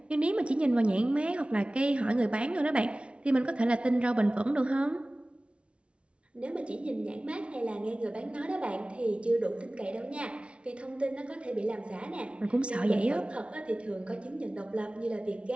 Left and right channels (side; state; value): left; late; 0.060 ms